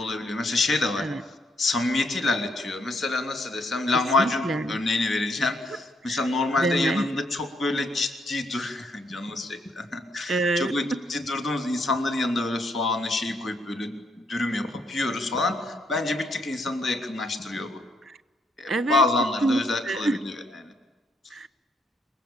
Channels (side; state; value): both; normal; correlation 0.74